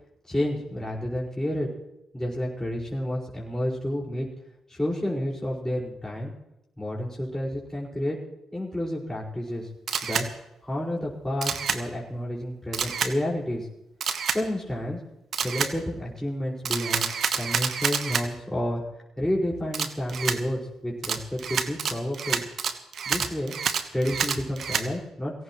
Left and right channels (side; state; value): both; normal; correlation 0.87